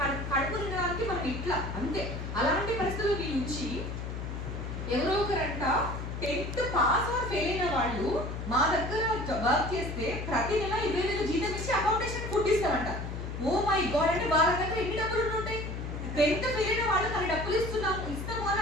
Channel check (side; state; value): left; noise; hum, 6 dB below the sound